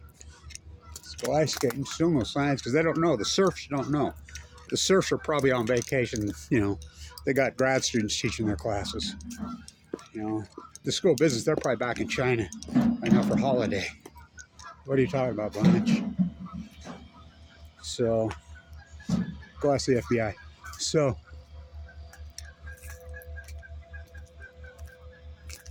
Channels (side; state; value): both; identical; correlation 1.00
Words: let's go ice skating. Still no signs because they don't know. The surfs don't know. The surfs are probably on vacation. You know, they got grad students teaching their classes. You know, the school of business, they're probably back in China right now for holiday. What are you talking about, Blanch? So, go ask the FBI. So,